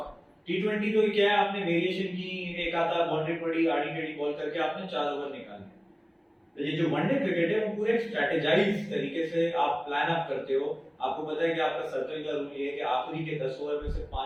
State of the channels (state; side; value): identical; both; correlation 1.00